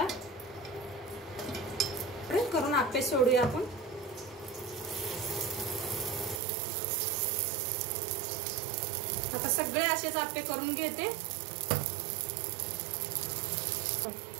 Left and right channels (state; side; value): drops out; left; at 6.4 s